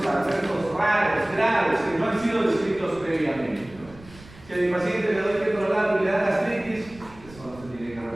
adversos raros, graves, que no han sido descritos previamente. Si a mi paciente le doy ketorolaco y le da gastritis, eso no se tiene que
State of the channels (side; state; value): right; noise; rumble, 21 dB below the sound